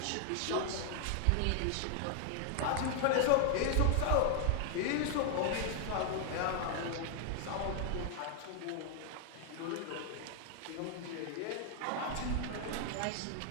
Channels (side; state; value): both; different; correlation 0.00